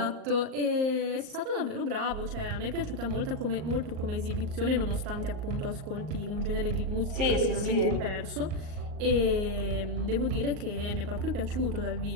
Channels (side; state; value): left; late; 38 ms